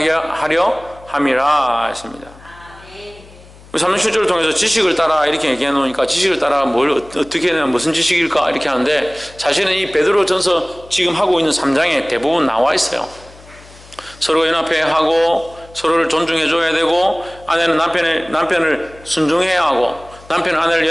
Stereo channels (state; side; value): noise; left; hum, 23 dB below the sound